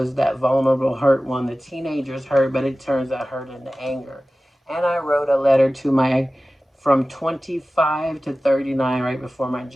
that vulnerable, hurt one. The teenager's hurt, but it turns that hurt into anger. And I wrote a letter to my from 25 to 39 right before my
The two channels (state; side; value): normal; both; correlation 0.96